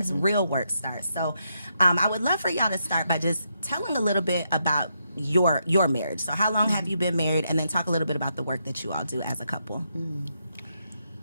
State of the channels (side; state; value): both; inverted; correlation -0.80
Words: real work starts. So I would love for y'all to start by just telling a little bit about your marriage. So how long have you been married? And then talk a little bit about the work that you all do as a couple.